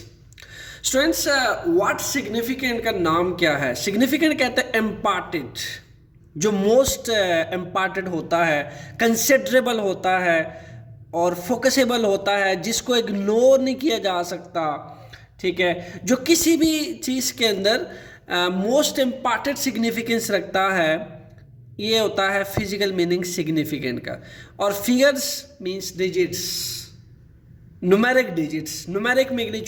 Students, what significant का नाम क्या है? सिग्निफिकेंट कहते हैं इम्पॉर्टेंट, जो मोस्ट इम्पॉर्टेंट होता है, कंसिडरेबल होता है और फोकसेबल होता है, जिसको इग्नोर नहीं किया जा सकता। ठीक है, जो किसी भी चीज़ के अंदर मोस्ट इम्पॉर्टेंट सिग्निफिकेंस रखता है, ये होता है फिजिकल मीनिंग सिग्निफिकेंट का। और figures means digits, numeric digits, numeric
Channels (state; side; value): identical; both; correlation 1.00